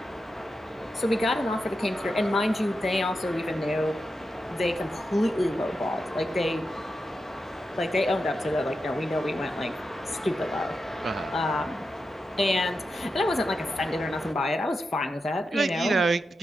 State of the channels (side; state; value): both; normal; correlation 0.88